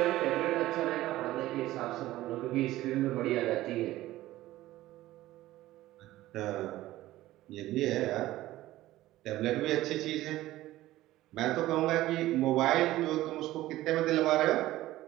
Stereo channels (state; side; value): quieter; left; 16.0 dB